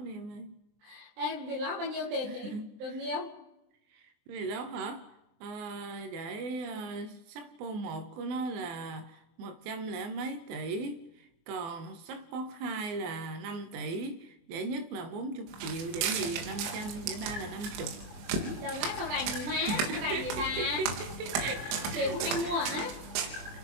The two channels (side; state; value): left; late; 24 ms